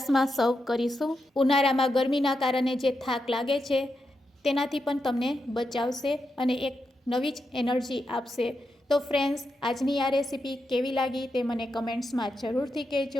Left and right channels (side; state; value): both; normal; correlation 0.86